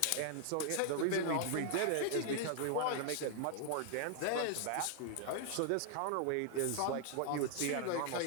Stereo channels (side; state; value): both; different; correlation 0.00